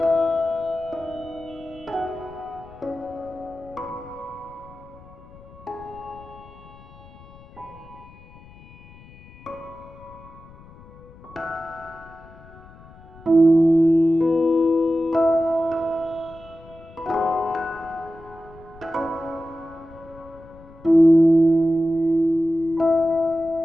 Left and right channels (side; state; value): left; noise; rumble, 21 dB below the sound